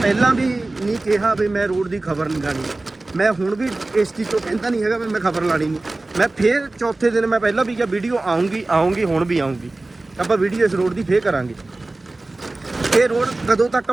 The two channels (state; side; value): quieter; left; 3.0 dB